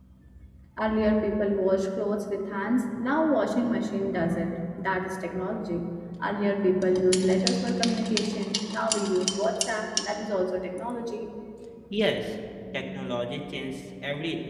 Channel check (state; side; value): identical; both; correlation 1.00